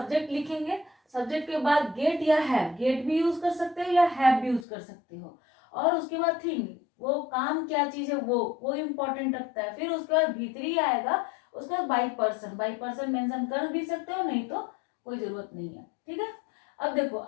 लिखेंगे, सब्जेक्ट के बाद गेट या हैव, गेट भी यूज कर सकते हो या हैव भी यूज कर सकते हो, और उसके बाद थिंग, वो काम क्या चीज है वो इम्पोर्टेंट रखता है। फिर उसके बाद V3 आएगा, उसके बाद बाई पर्सन मेंशन कर भी सकते हो, नहीं तो कोई जरूरत नहीं है, ठीक है। अब देखो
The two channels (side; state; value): right; drops out; at 4.7 s